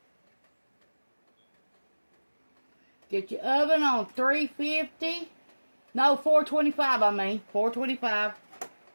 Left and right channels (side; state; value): both; inverted; correlation -1.00